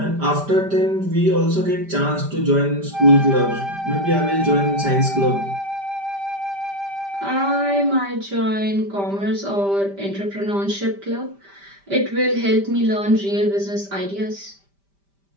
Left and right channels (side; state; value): left; late; 5.1 ms